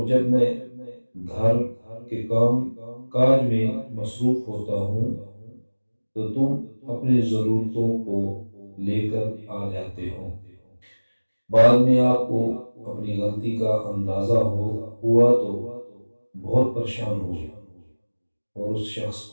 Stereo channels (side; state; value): both; inverted; correlation -1.00